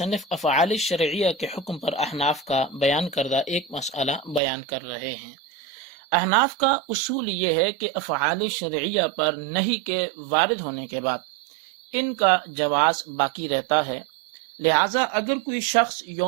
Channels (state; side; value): drops out; left; at 4.4 s